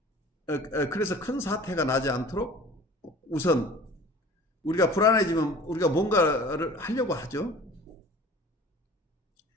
그래서 큰 사태가 나지 않도록 우선 우리가 불안해지면 우리가 뭔가를 하려고 하죠.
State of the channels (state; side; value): normal; both; correlation 0.44